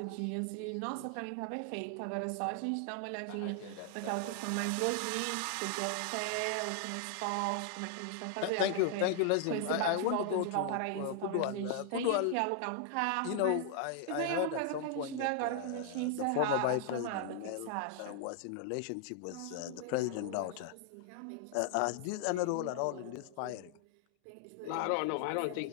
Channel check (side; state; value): both; different; correlation 0.00